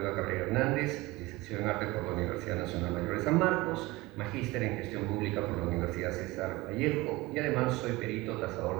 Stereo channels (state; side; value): quieter; left; 21.1 dB